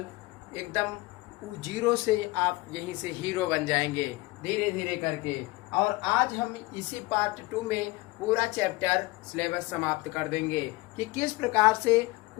एकदम 0 से आप यहीं से हीरो बन जाएंगे धीरे धीरे करके। और आज हम इसी पार्ट 2 में पूरा चैप्टर सिलेबस समाप्त कर देंगे कि किस प्रकार से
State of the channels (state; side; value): quieter; right; 21.8 dB